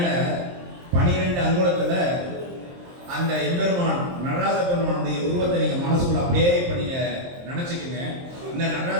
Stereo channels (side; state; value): left; late; 23 ms